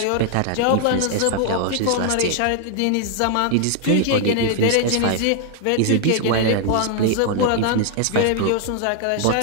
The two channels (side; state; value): both; different; correlation 0.00